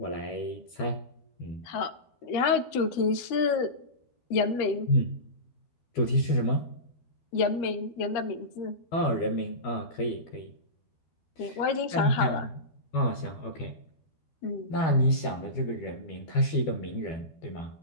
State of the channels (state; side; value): late; right; 12 ms